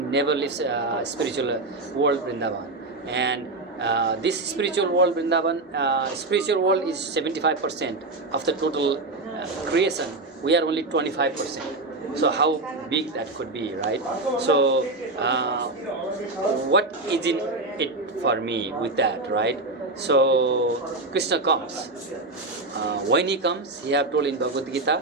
leaves spiritual world Vrindavan. And this spiritual world Vrindavan, spiritual world is 75% of the total creation. We are only 25%. So how big that could be, right? So what is in it for me with that, right? So Krishna comes. When he comes, he have told in Bhagavad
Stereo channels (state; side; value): quieter; left; 3.1 dB